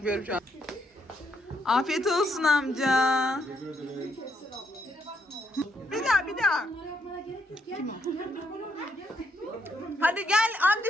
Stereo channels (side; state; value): both; normal; correlation 0.75